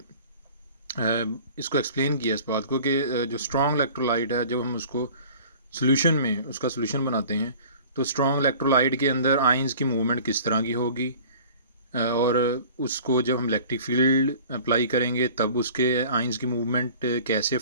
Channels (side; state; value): both; inverted; correlation -0.45